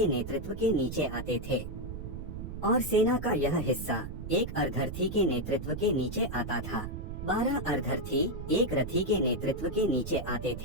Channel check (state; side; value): noise; right; rumble, 8 dB below the sound